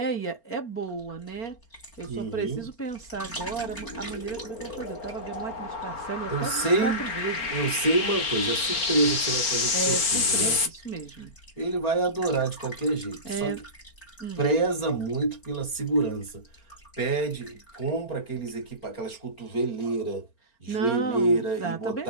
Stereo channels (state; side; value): late; right; 4.4 ms